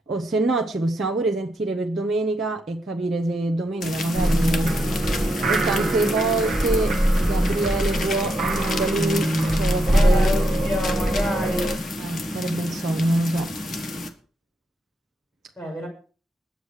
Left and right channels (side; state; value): both; normal; correlation 0.80